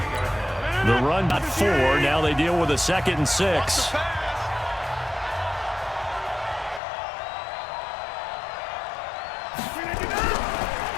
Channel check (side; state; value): right; drops out; at 6.8 s